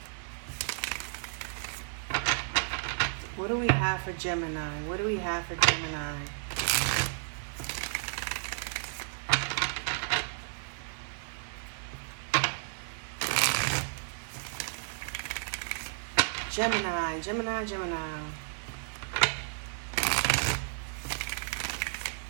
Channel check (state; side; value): silent; left; digital silence